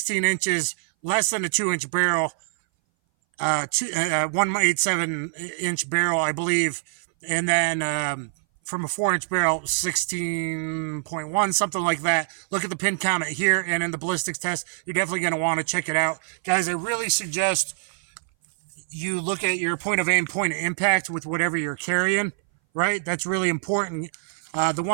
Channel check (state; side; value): silent; left; 60 dB below the other